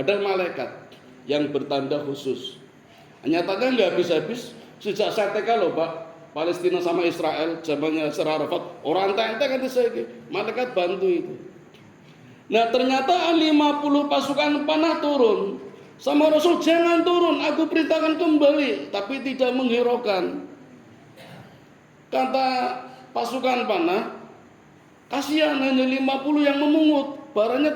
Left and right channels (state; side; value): identical; both; correlation 1.00